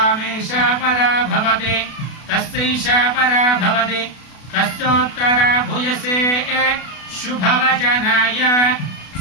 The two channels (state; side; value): late; right; 32 ms